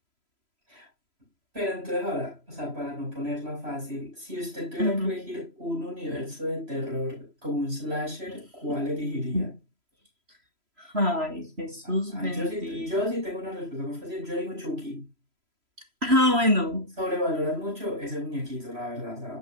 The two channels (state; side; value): late; left; 3.0 ms